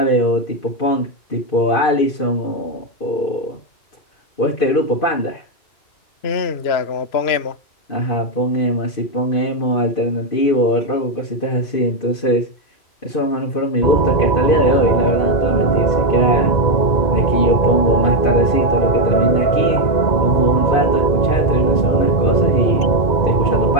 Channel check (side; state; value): right; late; 2.5 ms